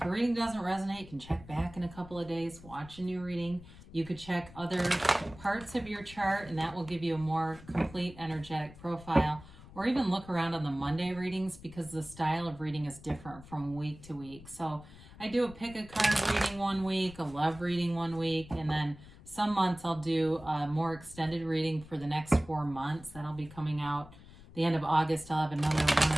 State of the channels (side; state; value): left; noise; rumble, 19 dB below the sound